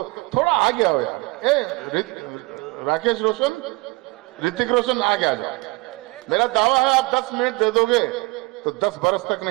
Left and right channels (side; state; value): left; quieter; 25.0 dB